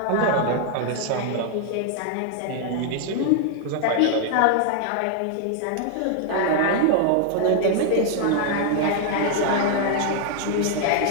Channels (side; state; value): both; different; correlation 0.00